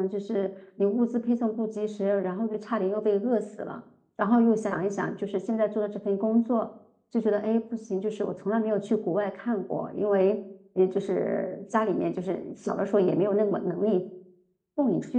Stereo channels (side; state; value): both; identical; correlation 1.00